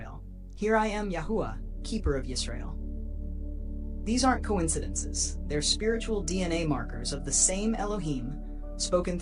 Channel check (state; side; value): identical; both; correlation 1.00